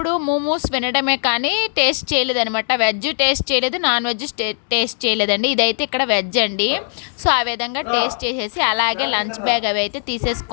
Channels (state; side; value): silent; right; digital silence